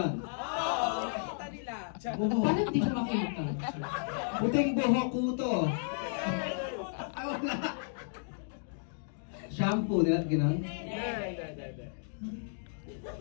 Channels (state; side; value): silent; right; digital silence